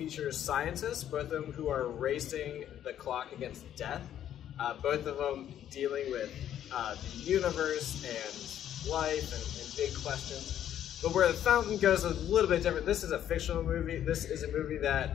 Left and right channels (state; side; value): quieter; right; 10.7 dB